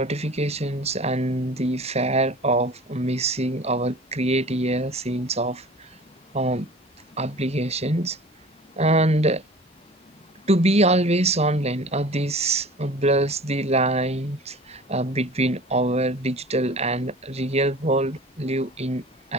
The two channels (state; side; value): normal; both; correlation 0.42